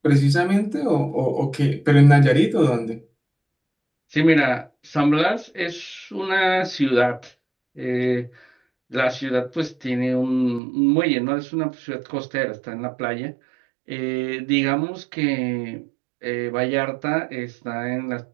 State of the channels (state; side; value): drops out; left; at 10.6 s